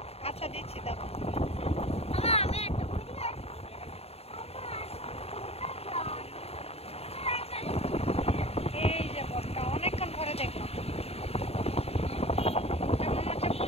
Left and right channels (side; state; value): right; late; 0.29 ms